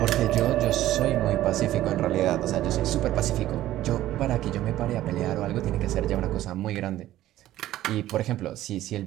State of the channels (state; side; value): quieter; left; 14.2 dB